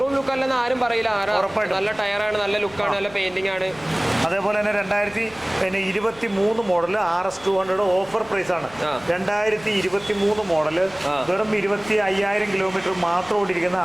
ലുക്ക് അല്ലെന്ന് ആരും പറയില്ല. ഉറപ്പായിട്ടും നല്ല ടയറാണ്, നല്ല ലുക്കാണ്, നല്ല പെയിന്റിംഗ് ആണ്. അതേപോലെ തന്നെ 2023 മോഡൽ RS 200 ഓഫർ പ്രൈസ് ആണ്. 2023 മോഡല് വെറും 25,000 കിലോമീറ്റർ മാത്രം ഓടിയിരിക്കുന്ന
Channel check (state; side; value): noise; left; rumble, 23 dB below the sound